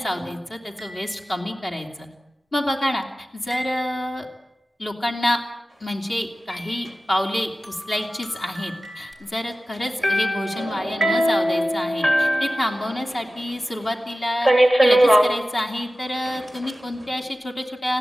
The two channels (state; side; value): normal; both; correlation 0.95